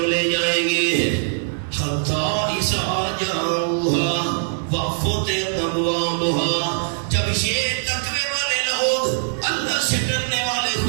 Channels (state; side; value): silent; left; digital silence